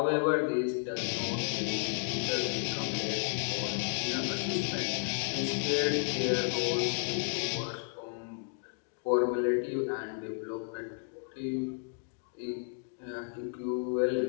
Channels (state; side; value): silent; right; digital silence